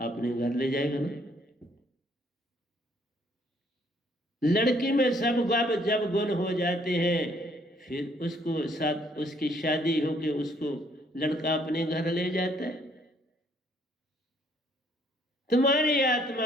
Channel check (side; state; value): both; normal; correlation 0.65